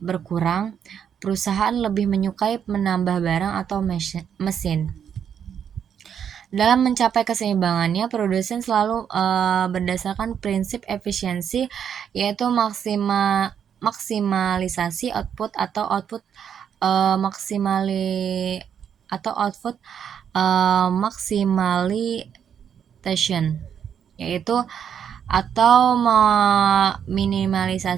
berkurang. Perusahaan lebih menyukai menambah barang atau mesin. Dalam mencapai keseimbangannya, produsen selalu berdasarkan prinsip efisiensi, yaitu maksimalisasi output atau output maximalization, yaitu atau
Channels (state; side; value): quieter; left; 8.2 dB